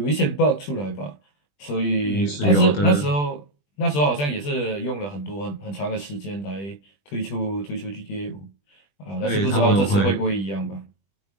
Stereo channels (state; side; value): late; right; 20 ms